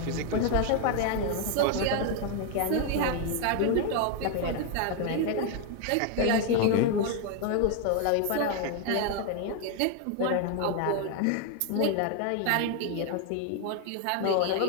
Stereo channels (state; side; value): different; both; correlation 0.00